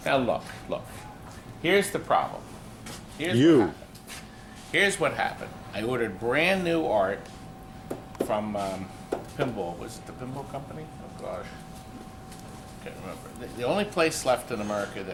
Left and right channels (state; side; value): identical; both; correlation 1.00